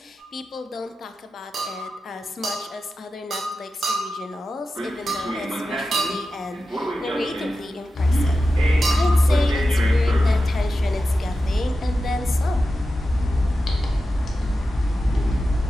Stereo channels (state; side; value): normal; both; correlation 0.92